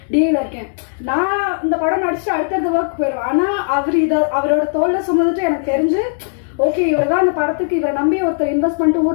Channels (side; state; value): right; silent; digital silence